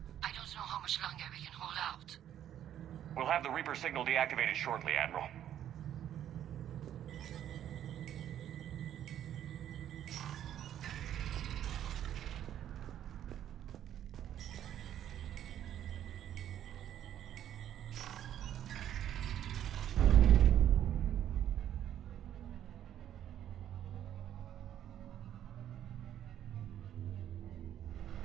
I don't know how much longer we can hold out. We'll have the Reaper signal deactivated shortly, Admiral.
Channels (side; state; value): left; quieter; 10.8 dB